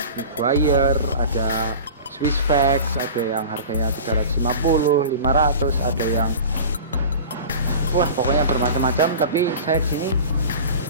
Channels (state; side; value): inverted; both; correlation -0.36